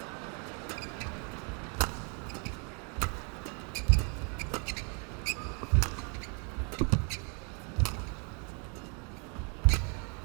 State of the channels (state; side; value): quieter; left; 36.9 dB